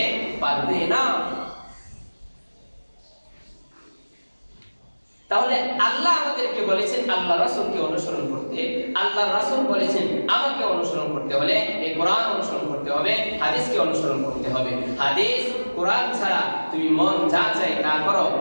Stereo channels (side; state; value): both; inverted; correlation -1.00